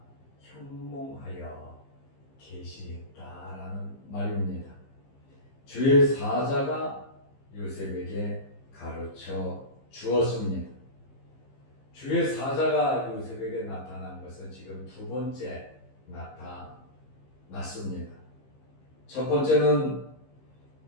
현몽하여 계시했다라는 말입니다. 주의 사자가 요셉에게 가르쳐 주었습니다. 주의 사자가 요셉에게 나타난 것은 지금 두 번째 나타났습니다. 첫 번째는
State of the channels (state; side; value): late; right; 15 ms